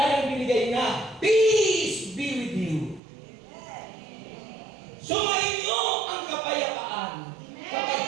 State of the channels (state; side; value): drops out; left; at 3.0 s